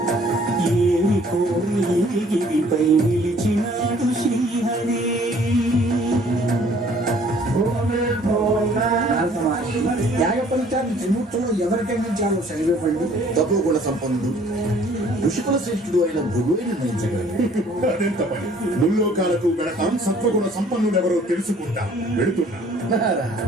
ఏమి కోరి గిరిపై నిలిచినాడు శ్రీహరి. జీవితంలో ఎవరికైనా చాలు శరీరపడి తక్కువ కూడా సంపన్నుడు ఋషికుల శ్రేష్ఠుడు అయిన భృగువే నిర్ణయించగలడు. అదెంత పని. ముల్లోకాలకు వెళతాం, సత్వగుణ సంపన్నుడెవరో తెలుసుకుంటా. వెళుతున్నా.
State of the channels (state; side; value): normal; both; correlation 0.57